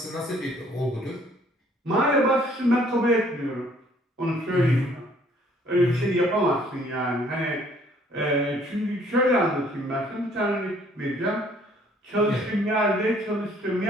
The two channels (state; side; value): normal; both; correlation 0.61